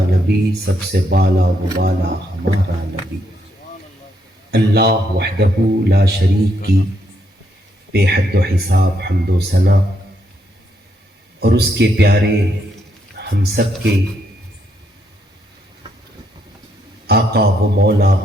نبی، سب سے بالا و والا ہمارا نبی۔ اللہ وحدہ لا شریک کی بے حد و حساب حمد و ثنا، اور اس کے پیارے ہم سب کے آقا و مولا،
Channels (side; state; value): both; normal; correlation 0.76